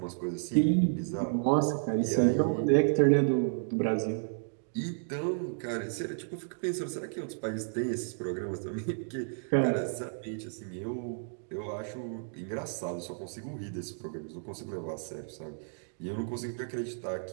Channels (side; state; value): left; silent; digital silence